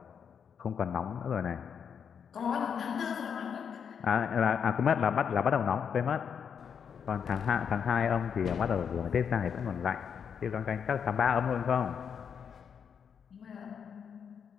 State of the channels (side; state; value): right; quieter; 7.2 dB